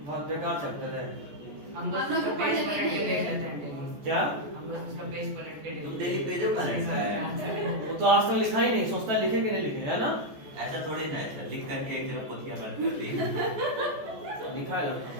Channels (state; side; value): late; left; 14 ms